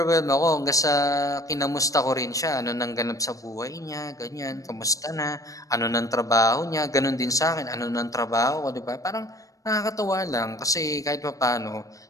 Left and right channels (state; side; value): late; right; 0.16 ms